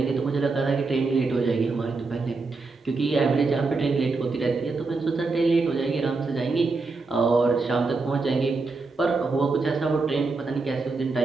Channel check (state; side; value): quieter; left; 3.9 dB